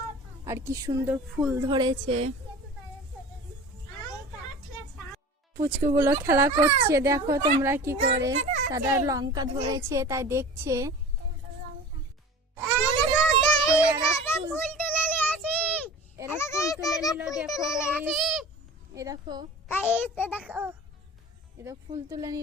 আর কি সুন্দর ফুল ধরেছে। পুচকুগুলো খেলা করছে, দেখো তোমরা কি করে। তারা লঙ্কা ধরেছে তাই দেখছে। এরা ফুল তুলে নিল, দেখো এই দেখো, এটা ফুল তুলে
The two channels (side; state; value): both; normal; correlation 0.38